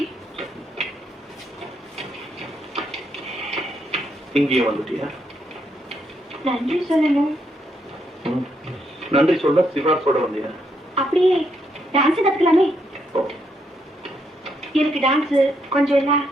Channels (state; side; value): normal; both; correlation 0.77